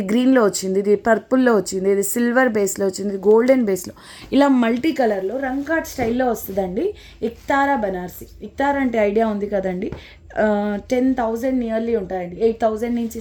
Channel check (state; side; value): identical; both; correlation 1.00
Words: గ్రీన్లో వచ్చింది, ఇది పర్పుల్లో వచ్చింది, ఇది సిల్వర్ బేస్లో వచ్చింది, ఇది గోల్డెన్ బేస్లో, ఇలా మల్టీ కలర్లో రంగ్ కార్డ్ స్టైల్లో వస్తుందండి. ఇక్తారా బనార్సి. ఇక్తారా అంటే ఐడియా ఉంది కదండి. 10,000 నియర్లీ ఉంటాయండి. 8,000 నుంచి